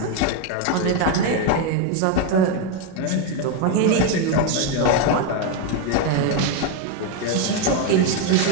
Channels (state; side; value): different; both; correlation 0.02